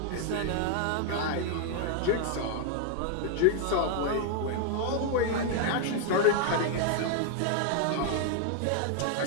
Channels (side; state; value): both; different; correlation 0.00